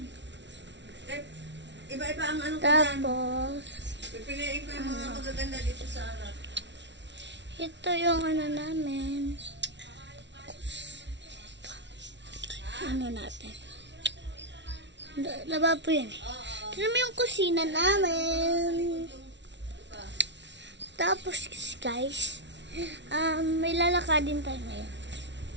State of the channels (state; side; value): late; left; 0.51 ms